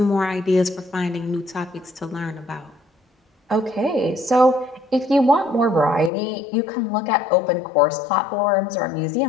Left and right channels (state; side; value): drops out; right; at 6.1 s